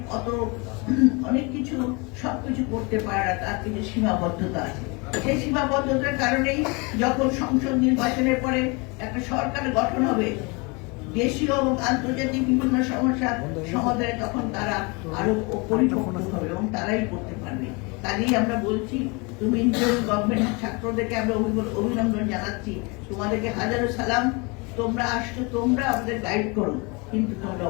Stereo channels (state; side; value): quieter; right; 28.8 dB